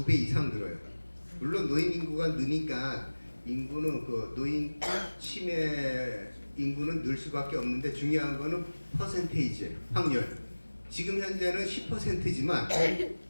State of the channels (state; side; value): inverted; both; correlation -1.00